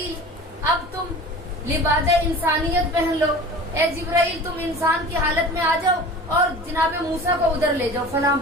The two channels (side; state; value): both; normal; correlation 0.39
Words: اب تم لباس انسانیت پہن لو، اے جبرائیل تم انسان کی حالت میں آ جاؤ اور جناب موسیٰ کو ادھر لے جاؤ فلاں